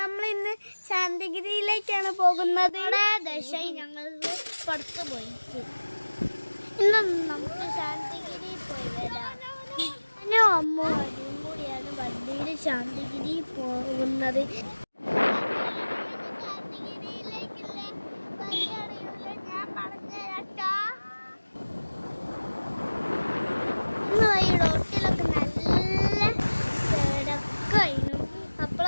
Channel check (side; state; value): both; inverted; correlation -1.00